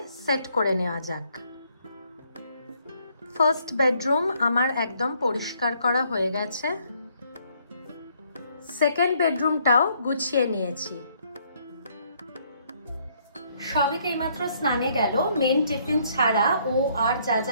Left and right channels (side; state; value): both; inverted; correlation -0.68